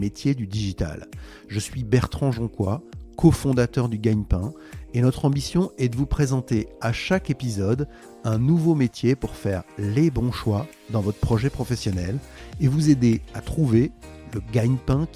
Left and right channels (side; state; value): both; identical; correlation 1.00